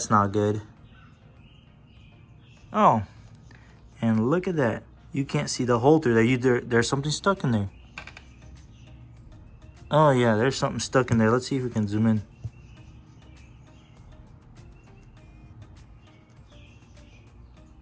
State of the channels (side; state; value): both; identical; correlation 1.00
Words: not good. Oh, and look at that. You can't see the hole through there. There's something stuck in there. Oh yeah, there's something stuck in there. Let's see if we can zoom in.